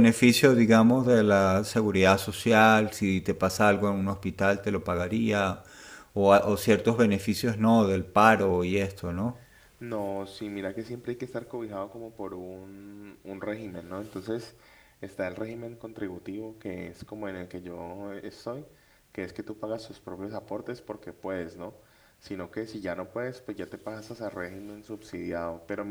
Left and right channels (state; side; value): identical; both; correlation 1.00